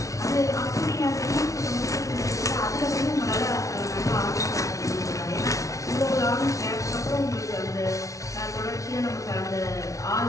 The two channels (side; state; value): right; late; 0.16 ms